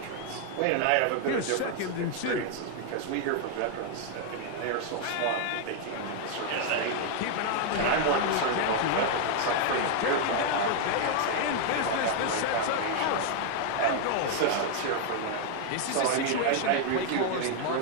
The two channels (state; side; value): different; both; correlation 0.00